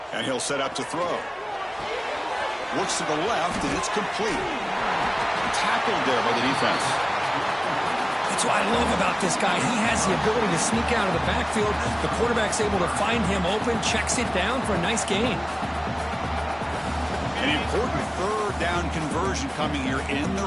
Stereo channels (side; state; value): both; identical; correlation 1.00